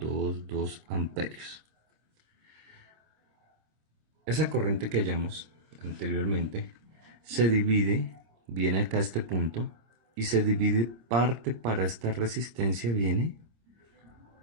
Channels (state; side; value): late; left; 26 ms